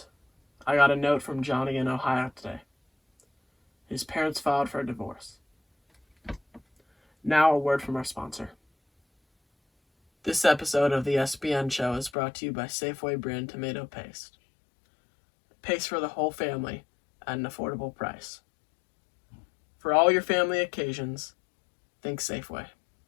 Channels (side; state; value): right; drops out; at 12.1 s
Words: I got a note from Johnny in Ohio today. His parents filed for a divorce. Now a word from our sponsor. This episode of the SBN show is brought to you by Safeway brand tomato paste. Paste for the whole family at an affordable price. For all your family occasions, think Safeway.